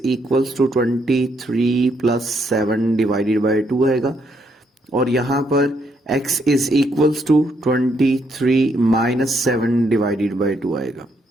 equals to 23 plus 7 divided by 2 आएगा और यहां पर x is equals to 23 minus 7 divided by 2 आएगा।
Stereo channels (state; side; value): normal; both; correlation 0.75